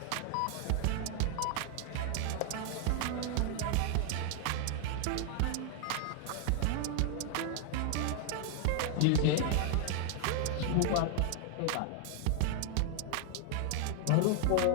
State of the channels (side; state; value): both; different; correlation 0.00